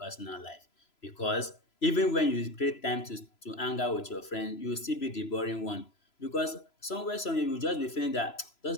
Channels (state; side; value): late; right; 3.0 ms